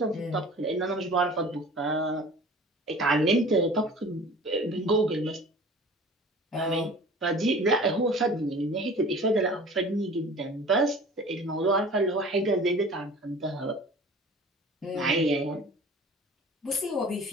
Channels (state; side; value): normal; both; correlation 0.44